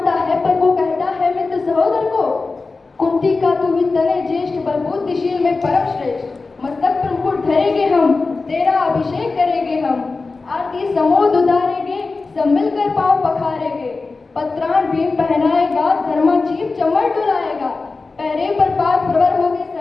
है पर वो कहता है मित्र सहोदर को। कुंती का तू ही तने ज्येष्ठ पर बुद्धिशील में परम श्रेष्ठ। मस्तक पर मुकुट धरेंगे हम तेरा अभिषेक करेंगे हम। आरती समोद उतारेंगे सब मिलकर पाँव पखारेंगे। पत्राण भीम पहनाएगा धर्मा जीव चमर डुलाएगा। पैरे पर पाद प्रवर होगे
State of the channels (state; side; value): quieter; right; 3.9 dB